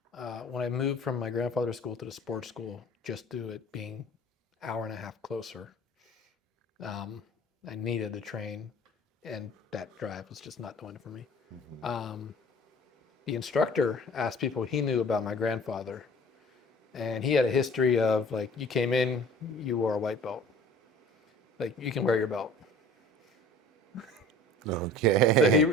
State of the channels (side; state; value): both; normal; correlation 0.47